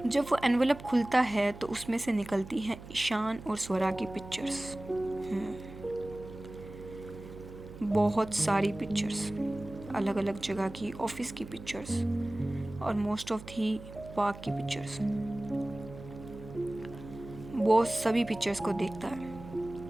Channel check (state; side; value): noise; right; hum, 14 dB below the sound